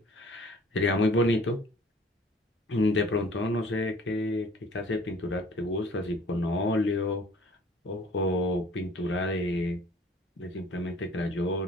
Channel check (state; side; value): normal; both; correlation 0.52